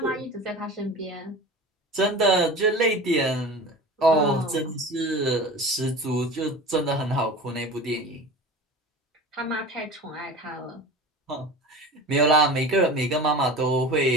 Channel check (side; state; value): both; normal; correlation 0.34